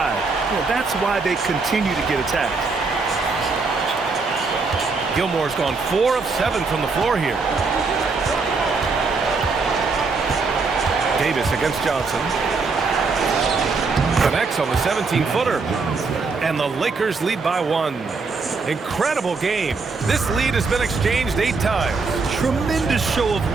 Well, that's why they continue to get attacked. Gilmore's gone 4 of 7 from the floor here. Davis against Johnson. Connects on the 17-footer. And the Lakers lead by 1. Incredible game. This lead has been exchanged 8 times. Tremendous show of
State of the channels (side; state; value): left; quieter; 4.3 dB